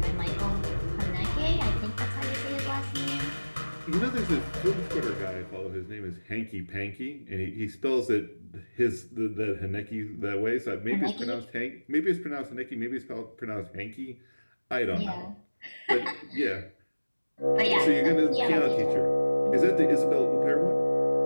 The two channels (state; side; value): inverted; both; correlation -1.00